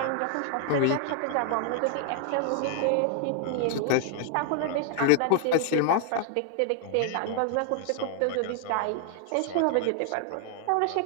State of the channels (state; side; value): different; both; correlation 0.00